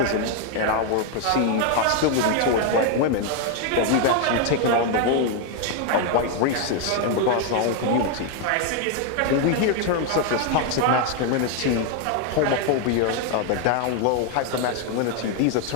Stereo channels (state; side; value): different; both; correlation 0.01